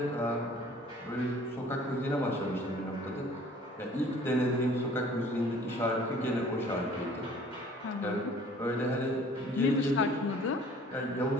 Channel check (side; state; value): both; normal; correlation 0.52